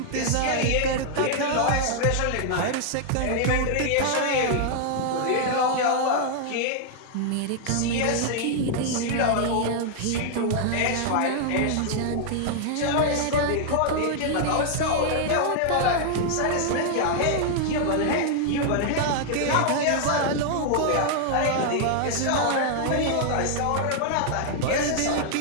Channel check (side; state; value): both; different; correlation -0.01